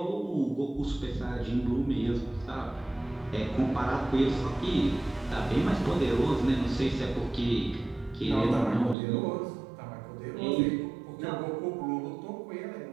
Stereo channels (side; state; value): left; drops out; at 9.0 s